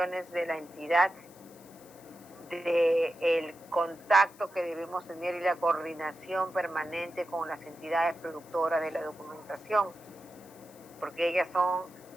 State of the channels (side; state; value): left; noise; hiss, 24 dB below the sound